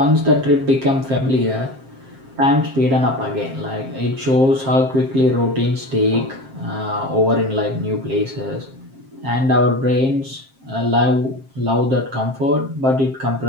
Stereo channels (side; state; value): left; late; 7.5 ms